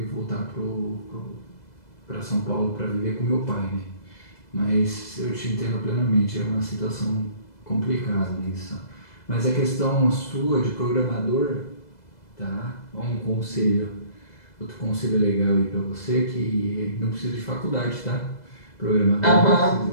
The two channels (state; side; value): late; right; 2.0 ms